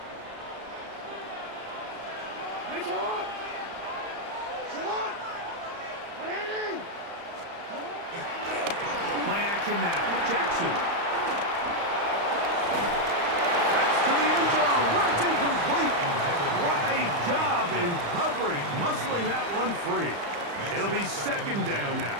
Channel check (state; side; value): late; left; 35 ms